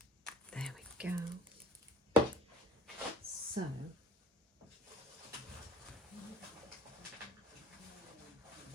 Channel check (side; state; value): both; normal; correlation 0.46